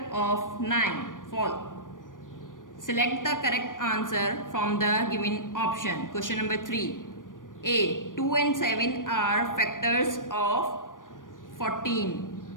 of 9. False. Select the correct answer from the given option. Question number 3. A 2 and 7 are factors of 14.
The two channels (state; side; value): late; right; 0.88 ms